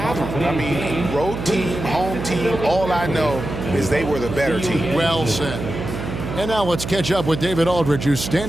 them. I mean, road team, home team, all I know is they were the better team. Well said. And now let's catch up with David Aldridge, who's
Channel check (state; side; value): noise; right; hum, 7 dB below the sound